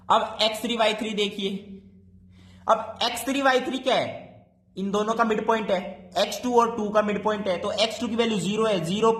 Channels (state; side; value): identical; both; correlation 1.00